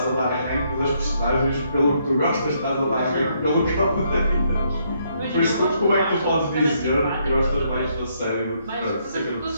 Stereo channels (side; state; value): both; inverted; correlation -0.73